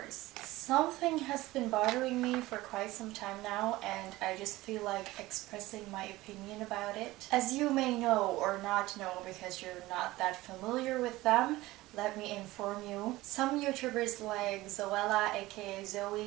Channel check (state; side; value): quieter; left; 18.4 dB